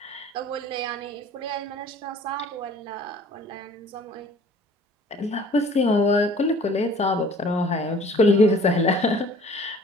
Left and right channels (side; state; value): both; normal; correlation 0.51